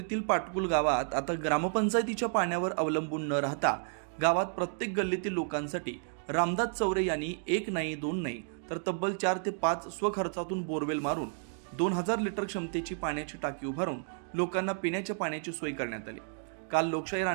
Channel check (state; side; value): silent; left; 57 dB below the other